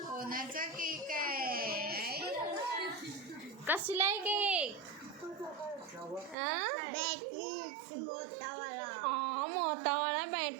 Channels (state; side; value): drops out; left; at 6.4 s